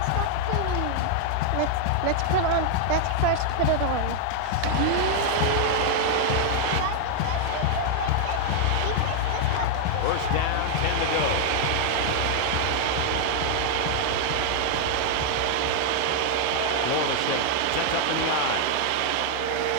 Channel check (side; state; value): both; different; correlation 0.00